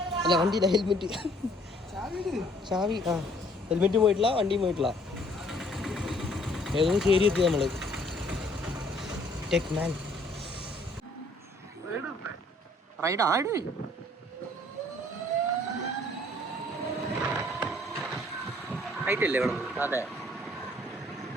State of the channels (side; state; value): both; normal; correlation 0.61